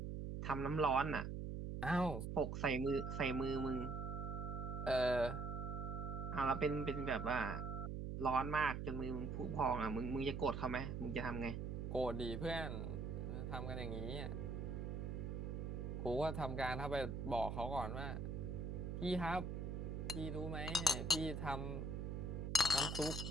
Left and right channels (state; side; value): noise; right; hum, 3 dB below the sound